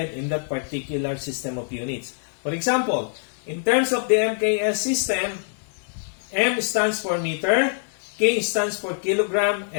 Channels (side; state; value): right; silent; digital silence